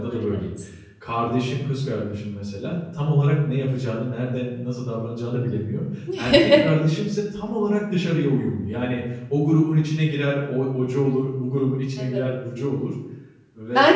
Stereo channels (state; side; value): identical; both; correlation 1.00